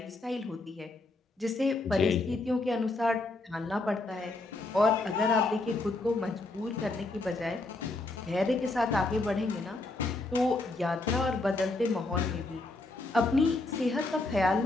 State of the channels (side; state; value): right; quieter; 3.1 dB